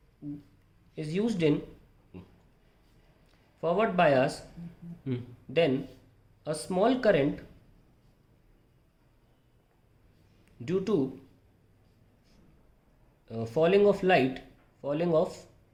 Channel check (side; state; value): both; identical; correlation 1.00